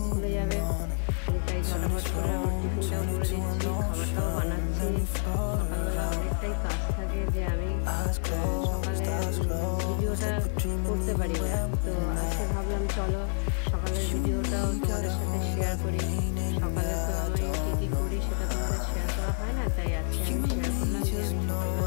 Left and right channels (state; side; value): silent; right; 59 dB below the other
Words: স্কুলে যাবে, তাই ঝটাফট করে আমার টিফিনটাও করে দিচ্ছি, খাবারটাও বানাচ্ছি। সকালবেলা অনেকটাই কাজ থাকে যে আমি সকালে ভিডিওটা করতে পারি না। তো আজকে ভাবলাম চলো সকালের ভিডিওটাও তোমাদের সাথে শেয়ার করি। সকালে তো আমি কী কী করি সেটা তোমাদের শেয়ার করা হয় না, তাই আজকে আমি শেয়ার করলাম যে আমি